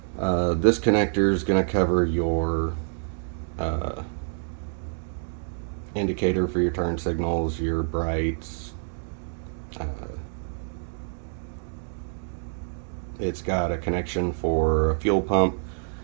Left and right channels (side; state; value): left; silent; digital silence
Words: This connector is going to cover your indicator for your turn signals, your brights. It's got a connection for a fuel pump